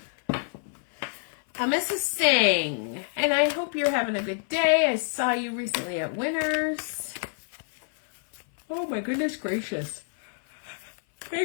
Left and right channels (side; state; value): right; silent; 57 dB below the other